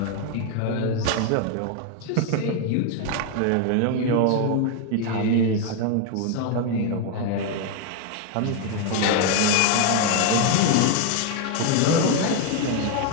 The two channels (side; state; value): both; different; correlation 0.01